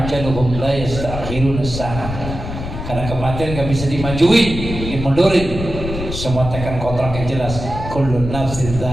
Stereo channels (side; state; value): left; noise; rumble, 7 dB below the sound